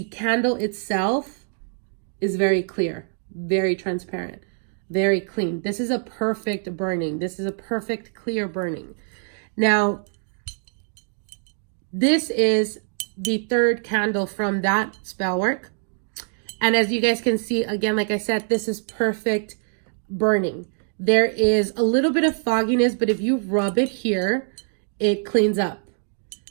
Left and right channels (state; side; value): silent; left; digital silence